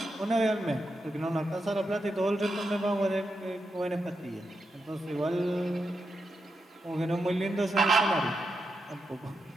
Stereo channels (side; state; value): both; normal; correlation 0.85